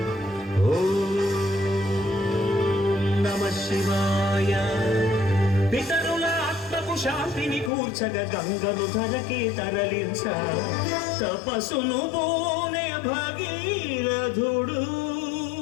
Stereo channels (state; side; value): drops out; right; at 7.7 s